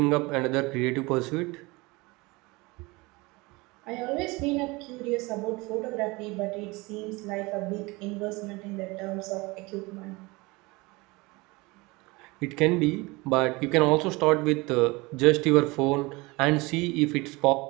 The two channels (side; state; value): left; quieter; 23.9 dB